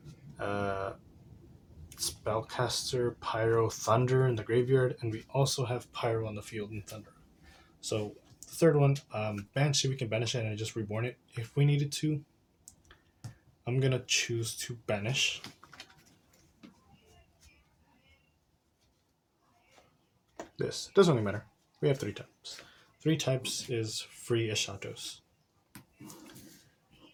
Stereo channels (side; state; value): both; identical; correlation 1.00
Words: spellcaster, pyro, thunder in the graveyard, and we also have pyro on the field and thunder. So the third one, Banshee, we can banish it and just reborn it if we needed to. I'm gonna choose to banish. This doesn't really matter. We have 3 types. 3 types is free Eschatos.